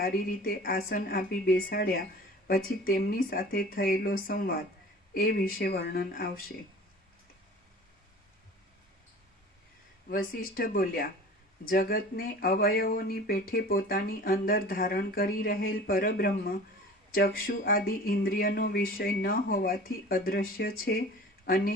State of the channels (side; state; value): both; normal; correlation 0.42